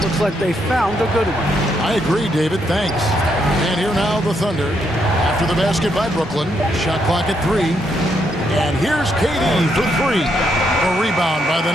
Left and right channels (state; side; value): normal; both; correlation 0.77